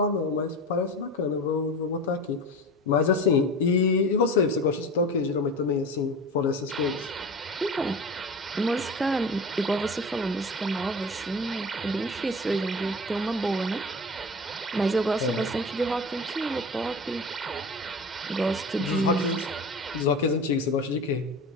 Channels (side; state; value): both; normal; correlation 0.33